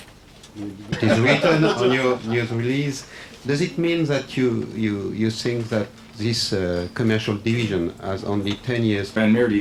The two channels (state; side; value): identical; both; correlation 1.00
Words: It is written on your news release. Does it mean that you think that this commercial division has only 10 years? Van Meert